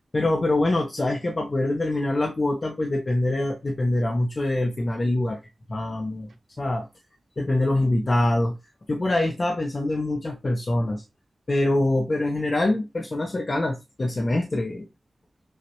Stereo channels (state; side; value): normal; both; correlation 0.96